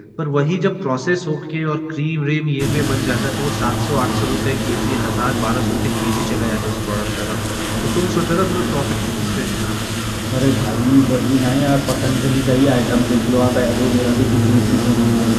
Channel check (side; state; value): both; identical; correlation 1.00